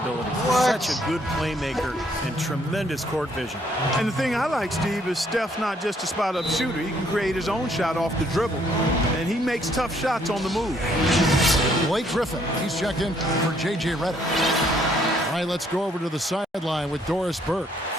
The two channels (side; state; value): both; normal; correlation 0.67